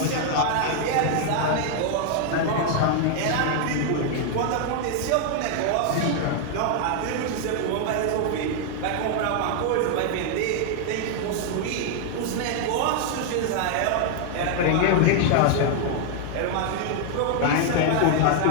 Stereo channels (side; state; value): both; different; correlation 0.00